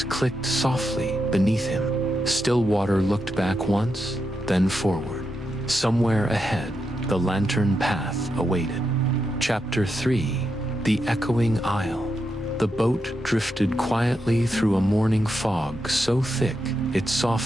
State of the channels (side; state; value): both; normal; correlation 0.85